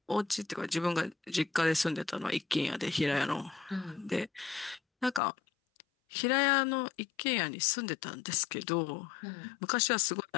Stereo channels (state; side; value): drops out; right; at 5.2 s